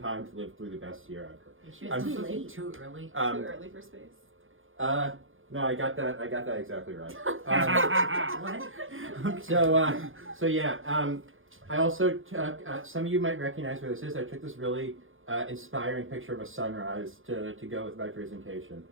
to live through the best year ever." Too late, too early. Too early for space. No, I got that exactly right. What? So yeah. I also took, some of you might recognize where this is. I took this really inspiring picture of a sunrise to go with my presentation.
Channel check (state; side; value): late; left; 0.58 ms